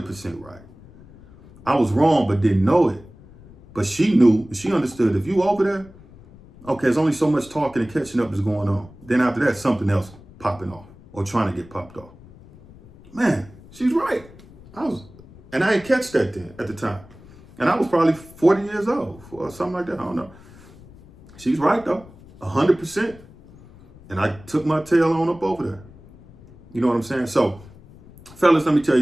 right. I was wrong, but didn't know it. But she knew, she understood. If you over there, okay, there's only so much talking and catching up is going on. Then after that, something else popping off or trying to get popped off. Man, she's right. And I didn't catch that then at the time. And I was probably 40 years old or something like that. I don't know. She's right though, 100%. And I took my tail on up over there. You know what I'm saying? So, fellas, let me tell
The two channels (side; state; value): left; noise; rumble, 22 dB below the sound